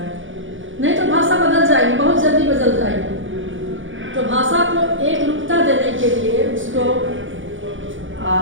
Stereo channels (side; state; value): left; late; 0.56 ms